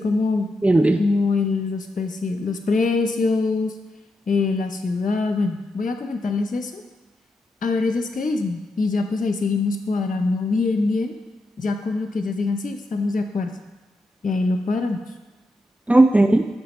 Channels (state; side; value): normal; both; correlation 0.85